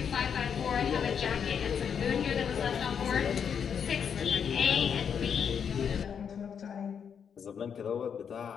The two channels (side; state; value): right; quieter; 7.4 dB